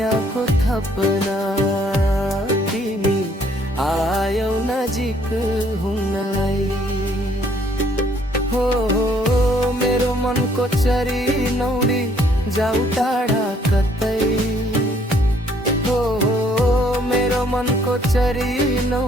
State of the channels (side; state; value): both; normal; correlation 0.64